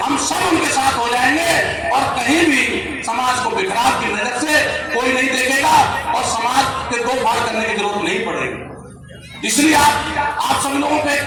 हम सब उनके साथ हो जाएंगे और कहीं भी समाज को बिखराव की नजर से कोई नहीं देखेगा और समाज के दो फाड़ करने की जरूरत नहीं पड़ेगी। इसलिए आप सभी लोगों को एक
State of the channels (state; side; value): identical; both; correlation 1.00